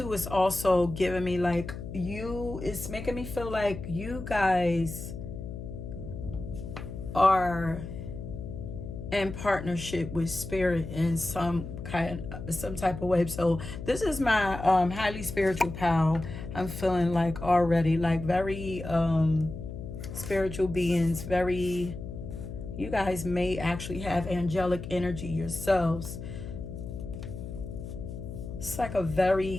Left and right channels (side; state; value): left; noise; hum, 9 dB below the sound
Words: is also giving me like it's making me feel like you guys are in partnership with spirit in some type of way. So this is my highly spiritual pal. I'm feeling like already like very spiritual beings. Very, you guys may actually have angelic energy yourselves. It's like a very